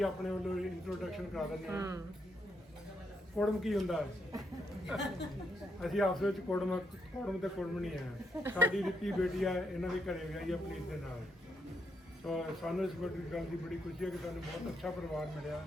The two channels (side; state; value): both; normal; correlation 0.78